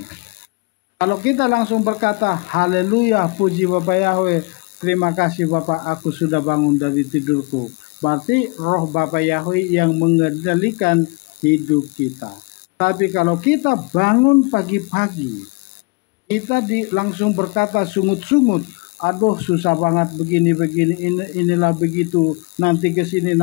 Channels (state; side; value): quieter; right; 29.4 dB